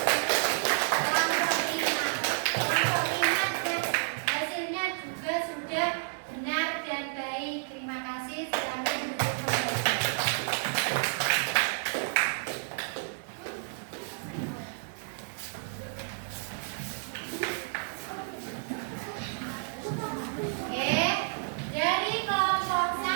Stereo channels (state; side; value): silent; left; digital silence